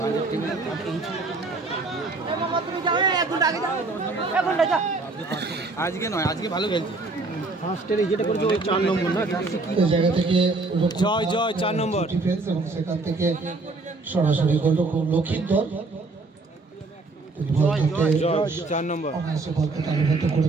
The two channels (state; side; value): quieter; left; 3.5 dB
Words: আজকে নয়, আজকে ভালো খেলছে। ফার্স্টের যেটা করেছে ওই 4 নম্বর না, জায়গা থেকে জয় 4 নম্বর ডিফেন্স এবং সেখান থেকে সরাসরি গোলরক্ষক লক্ষিন্দর 4 নম্বর অনায়াসে বলকে তালিবদ্ধ